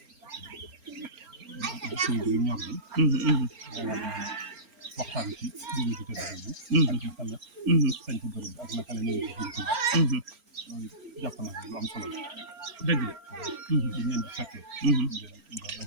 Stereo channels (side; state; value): left; late; 4.4 ms